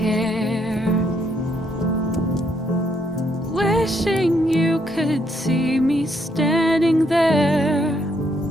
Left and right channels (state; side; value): normal; both; correlation 0.73